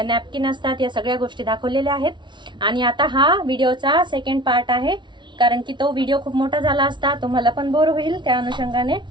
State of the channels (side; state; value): left; late; 0.23 ms